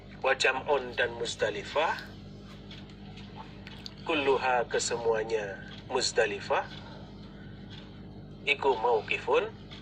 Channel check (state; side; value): identical; both; correlation 1.00